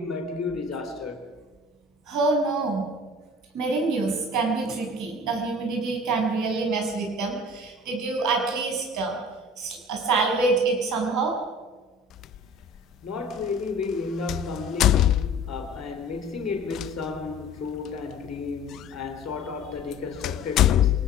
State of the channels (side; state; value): both; normal; correlation 0.44